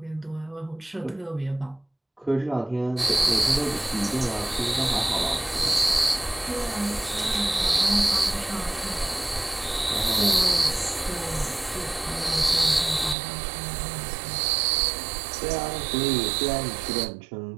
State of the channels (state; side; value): drops out; left; at 13.2 s